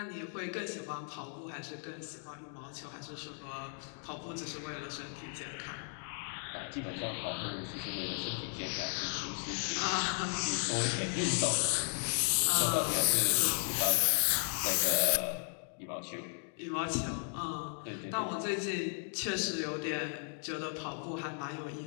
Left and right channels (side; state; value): right; silent; 54 dB below the other